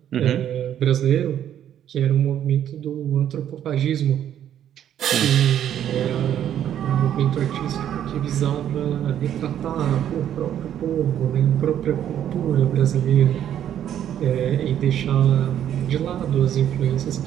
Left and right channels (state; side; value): quieter; left; 10.4 dB